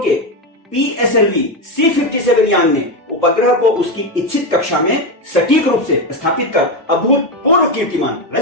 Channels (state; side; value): normal; both; correlation 0.12